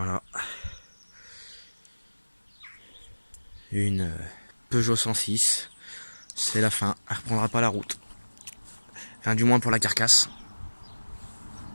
Une Peugeot 106. C'est la fin. Elle reprendra pas la route. Enfin du moins pour la carcasse.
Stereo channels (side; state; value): both; inverted; correlation -1.00